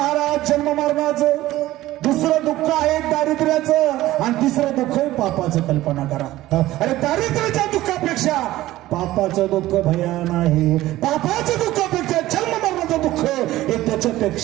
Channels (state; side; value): quieter; left; 16.0 dB